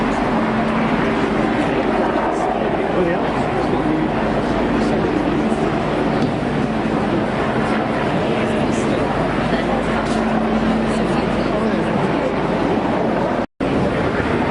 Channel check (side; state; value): both; identical; correlation 1.00